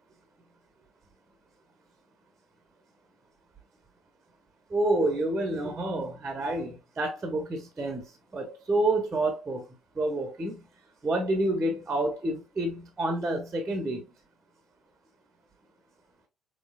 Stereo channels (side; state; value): both; normal; correlation 0.72